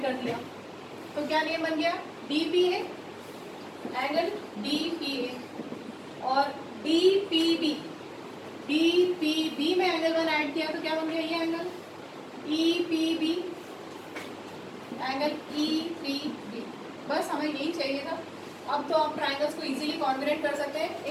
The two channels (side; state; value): both; identical; correlation 1.00